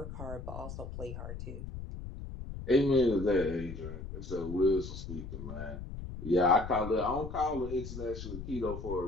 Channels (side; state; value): left; noise; rumble, 9 dB below the sound